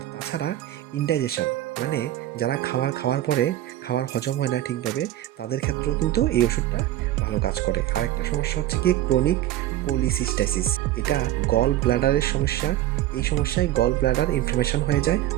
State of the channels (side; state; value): left; quieter; 13.7 dB